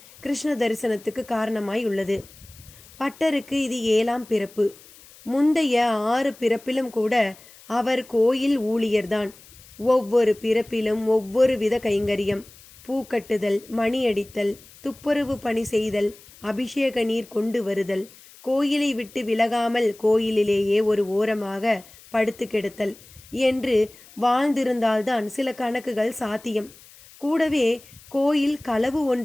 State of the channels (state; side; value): noise; left; hiss, 23 dB below the sound